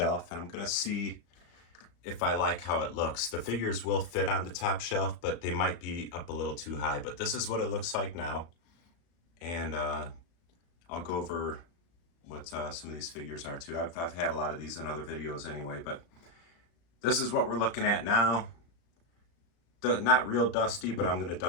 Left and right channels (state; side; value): late; right; 35 ms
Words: and I'm going to see if I like how it looks. The figures will fit on the top shelf, but they might be up a little too high. But this is what it looks like now. And I'll go over what some of these figures are too. I've had a lot of these in other videos anyway, but this is what we're looking at now. Not real dusty, but I'm going to